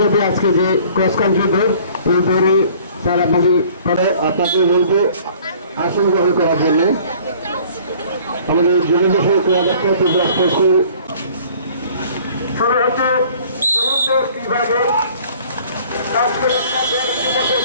আজকে যে ক্রস কান্ট্রি দৌড় এই দৌড়ে তারা আপনাকে বলবো আসন গ্রহণ করার জন্য আমাদের জনদেশের ক্রীড়াদপ্তর ত্রিপুরা স্পোর্টসের শুরু হচ্ছে বিভাগের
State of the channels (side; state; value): both; inverted; correlation -0.52